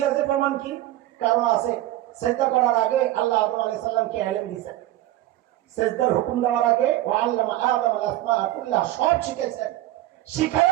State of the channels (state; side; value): quieter; left; 15.0 dB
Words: যে প্রমাণ কি? কারণ আছে। সেজদা করার আগে আল্লাহ আদম আলাইহিস সালামকে ইলম দিয়েছেন। সেজদার হুকুম দেওয়ার আগে ওয়া আল্লামা আদম আল আসমা কুল্লাহ সব শিখেছেন।